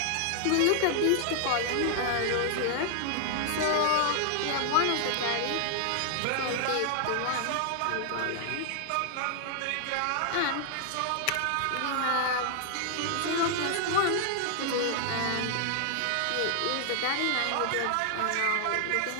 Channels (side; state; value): both; different; correlation 0.00